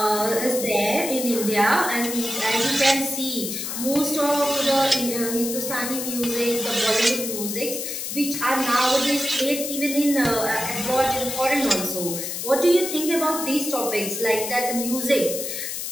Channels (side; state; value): left; noise; hiss, 5 dB below the sound